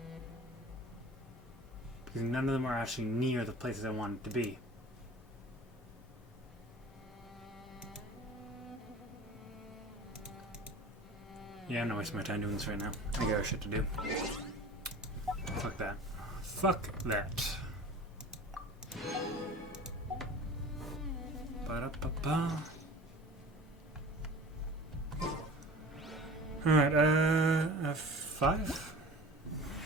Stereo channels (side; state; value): both; normal; correlation 0.40